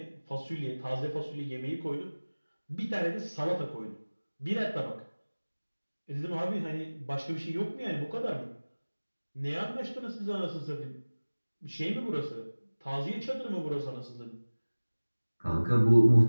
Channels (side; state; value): both; inverted; correlation -1.00